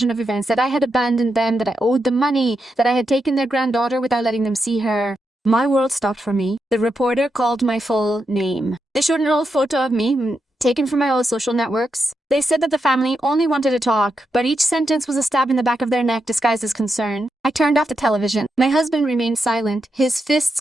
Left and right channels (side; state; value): both; normal; correlation 0.85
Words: of events, that I had abandoned them, that I owed them money, that I had taken their granddaughter without letting them see her. My world stopped for me. The reporter called my full name. They showed an old photo of me, taken from my old social networks. They said that the family only wanted to talk, but each sentence was a stab in the back of their neck disguised as concern. I turned off the television. My husband remained silent, his fists